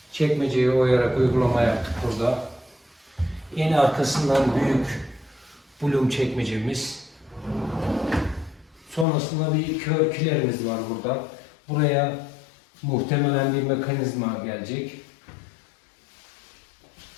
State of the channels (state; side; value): drops out; right; at 9.1 s